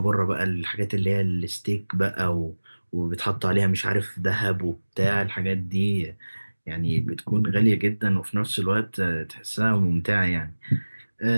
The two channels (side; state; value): both; inverted; correlation -1.00